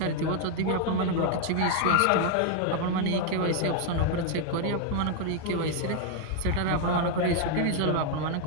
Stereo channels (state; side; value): different; both; correlation 0.00